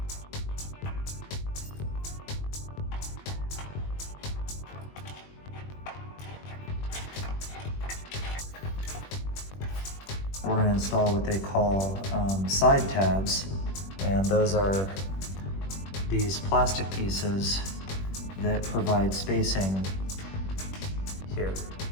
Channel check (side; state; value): right; late; 21 ms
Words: We're going to install what they call side tabs, and those are these plastic pieces that provide spacing here.